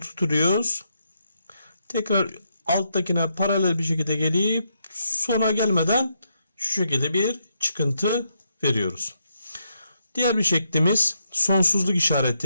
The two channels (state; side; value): inverted; both; correlation -0.79